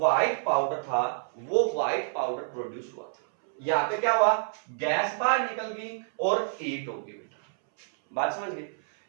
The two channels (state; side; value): silent; left; 59 dB below the other